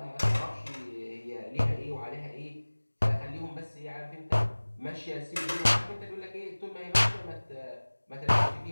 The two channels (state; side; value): inverted; both; correlation -1.00